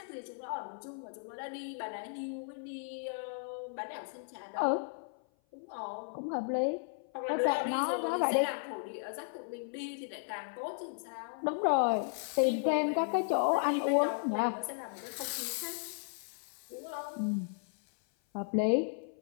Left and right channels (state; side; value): silent; right; 54 dB below the other